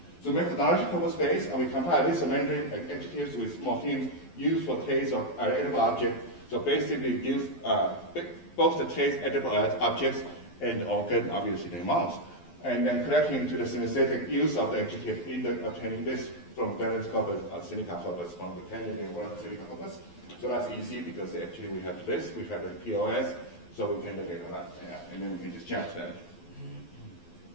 So methodological space, and we compare this Mandarin adjectives with morphemes used for taste of edible object. So basically use both the taste edible objects and organ, obviously the mouth. And then connecting to the synesthetic use of the adjective, either obtaining this from Darren's corpus or Seneca corpus, from the Canadian word Seneca corpus. So that's easy because actually we have this, we have the POS, so we can look at that, and then we can just judge that.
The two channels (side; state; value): right; late; 12 ms